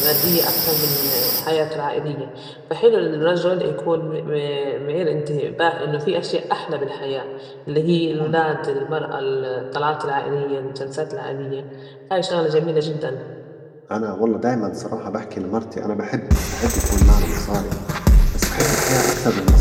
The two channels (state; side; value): identical; both; correlation 1.00